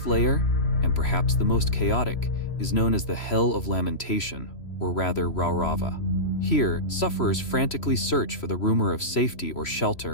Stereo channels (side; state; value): right; late; 3.0 ms